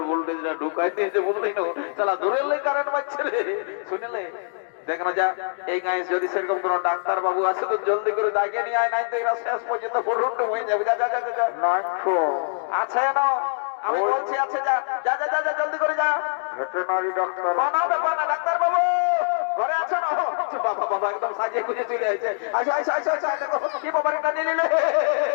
ভোল্টেজ ঢুকাই দিয়েছে বুঝলি না শালা দূরের লাই কারেন্ট মারছে রে শুনলে দেখ না যা এই গায়ে যদি সেরকম কোনো ডাক্তার বাবু আছে তো জলদি করে ডাকে নিয়ে আয়, নাই তো এরা শেষ পর্যন্ত পুরুন্ডু হয়ে যাবে। যা যা যা যা নাই তো আছে না, আমি বলছি আছে, যা যা যা যা যা জলদি করে যা। ভেটেরিনারি ডাক্তার কোনো ব্যাপার না, ডাক্তার বাবু ঘরে আছো না? বাবা বাবা একদম সাজিয়ে গুজে চলে আসছে। আসো আসো আসো আসো, দেখো কি বাবার এটা নিয়ে নিলে।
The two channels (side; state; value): right; silent; digital silence